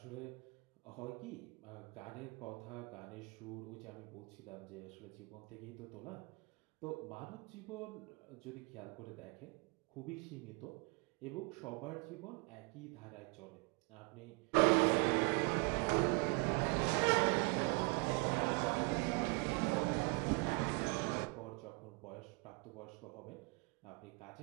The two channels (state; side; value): quieter; left; 30.9 dB